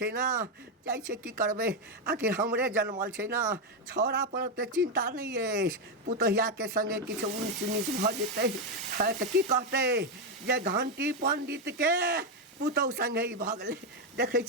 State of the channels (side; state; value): both; normal; correlation 0.05